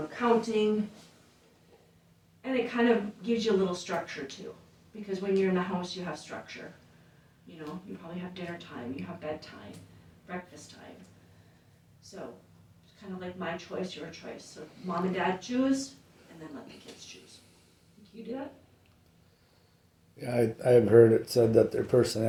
counting, and it kind of gives you a little structure too. Because when you're in the house, you have structure. You know, you probably have dinner time, you have bedtime, breakfast time. So, it's kind of like my choice, your choice. So, mom and dad choose, and then let the kids choose. Do you do that? Yeah, I've heard it said that their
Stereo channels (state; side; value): identical; both; correlation 1.00